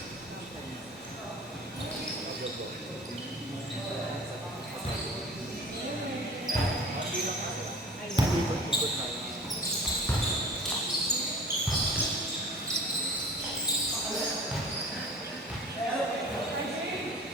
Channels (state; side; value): normal; both; correlation 0.42